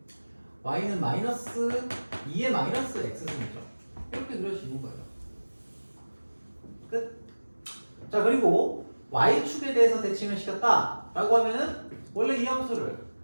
y는 마이너스 2의 마이너스 x승이죠. 이렇게 그릴 수 있는 거예요. 끝. 자, 그리고 y축에 대해서 대칭을 시켰다 라고 하면은 원래 이 함수를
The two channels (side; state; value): both; inverted; correlation -1.00